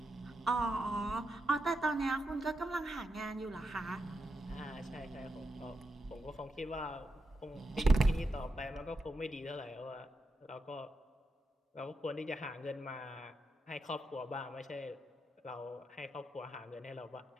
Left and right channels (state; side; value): normal; both; correlation 0.86